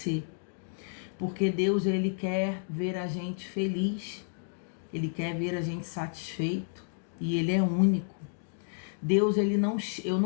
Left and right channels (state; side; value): silent; right; digital silence